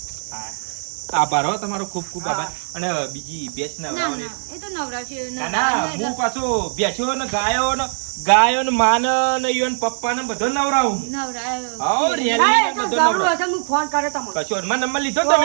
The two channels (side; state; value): left; silent; 65 dB below the other